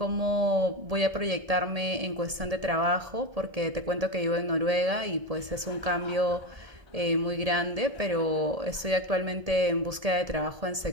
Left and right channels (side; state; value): left; late; 1.7 ms